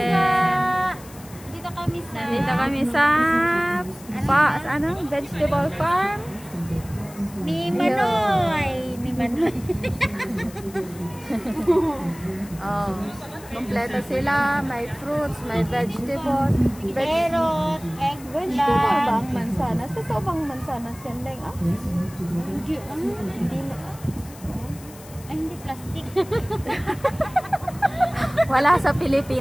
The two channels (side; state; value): left; noise; hiss, 20 dB below the sound